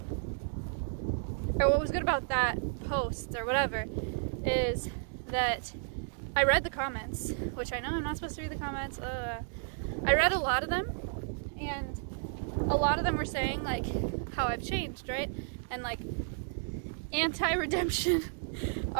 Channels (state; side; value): silent; left; digital silence